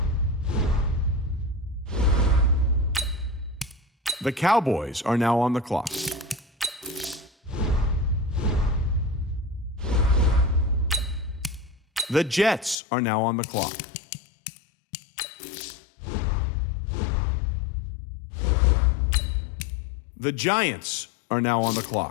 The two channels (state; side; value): drops out; right; at 12.8 s